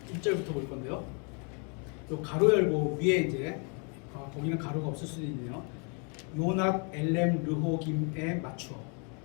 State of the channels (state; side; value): quieter; right; 37.2 dB